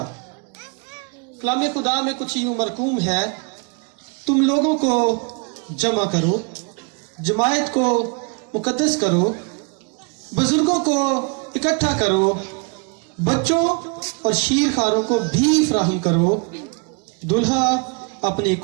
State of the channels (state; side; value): quieter; left; 34.1 dB